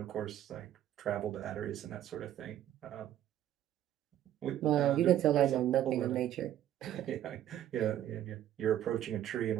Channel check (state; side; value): quieter; left; 11.8 dB